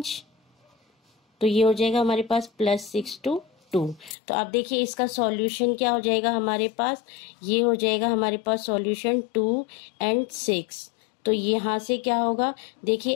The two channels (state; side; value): drops out; right; at 4.2 s